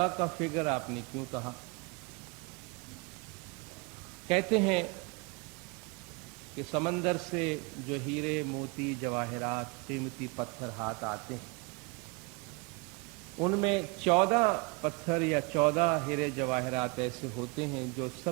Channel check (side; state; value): left; quieter; 29.7 dB